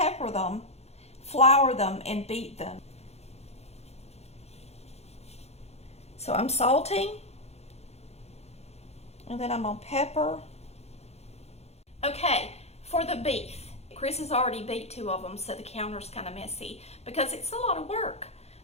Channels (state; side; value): late; right; 0.31 ms